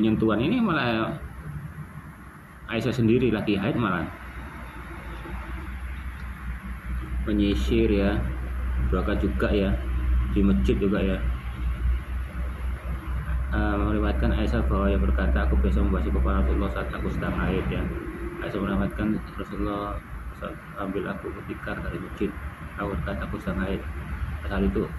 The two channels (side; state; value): both; identical; correlation 1.00